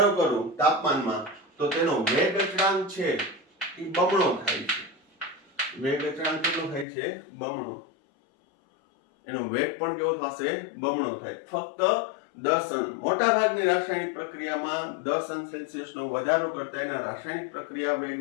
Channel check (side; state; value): right; drops out; at 6.9 s